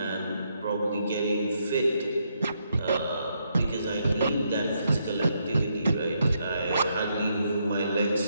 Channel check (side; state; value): both; inverted; correlation -0.77